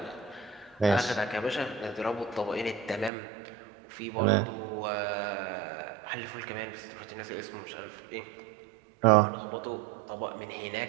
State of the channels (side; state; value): left; drops out; at 3.1 s